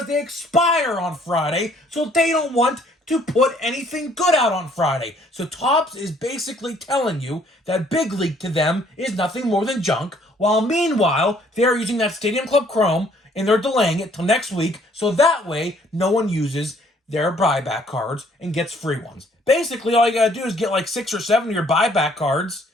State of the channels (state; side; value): normal; both; correlation 0.62